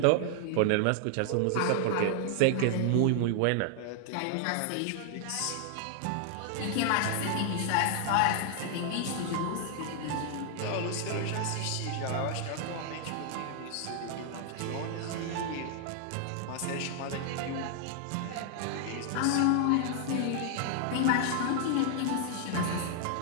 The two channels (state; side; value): different; both; correlation 0.00